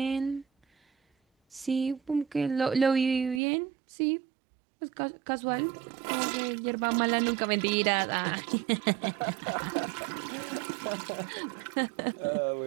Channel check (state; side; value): drops out; left; at 3.4 s